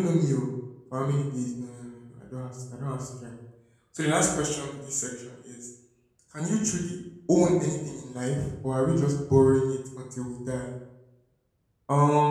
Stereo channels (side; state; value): both; identical; correlation 1.00